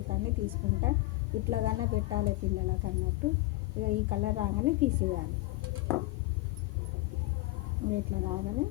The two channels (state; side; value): quieter; right; 19.5 dB